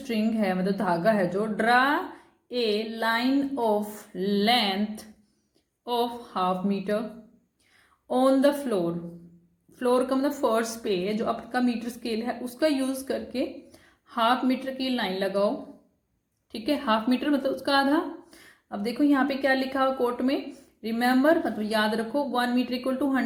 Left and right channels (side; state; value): both; identical; correlation 1.00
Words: है मतलब धागा है जो, draw a line of length of half metre on the floor. Floor का मतलब फर्श पे जो आपका मीटर स्केल है उसका यूज करके हाफ मीटर की लाइन लगाओ। ठीक है, हाफ मीटर मतलब उसका आधा। अब देखो यहाँ पे क्या लिखा हो कोट में, रिमेंबर मतलब याद रखो, 1 मीटर इक्वल टू